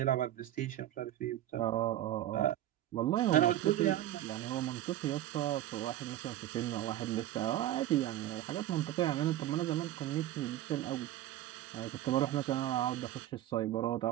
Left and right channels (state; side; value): quieter; left; 13.4 dB